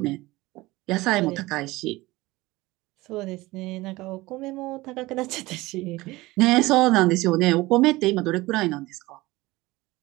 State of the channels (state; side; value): quieter; left; 20.1 dB